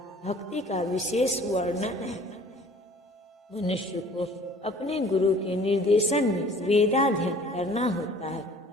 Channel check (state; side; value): normal; both; correlation 0.51